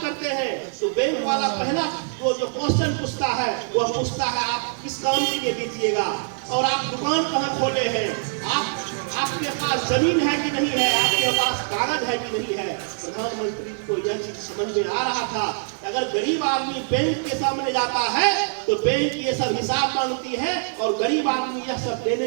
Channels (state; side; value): silent; left; digital silence